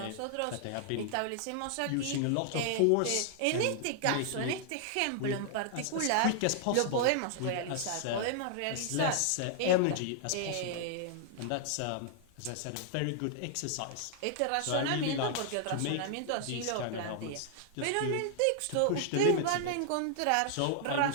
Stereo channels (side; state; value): both; different; correlation 0.00